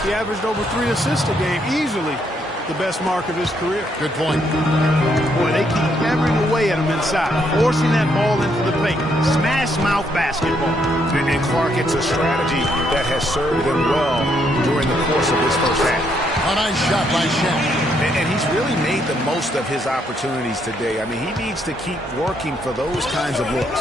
he averaged over 3 assists a game, easily the best mark of his career. Good point. Boy, they keep hammering away at him inside, forcing that ball into the paint. Smash mouth basketball. And Clark, it's a strategy that has served him well during the course of this first half. A nice shot by Shaq. And he's really made the most of his opportunities today. I mean, he needs to keep working for those kinds of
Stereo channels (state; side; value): normal; both; correlation 0.73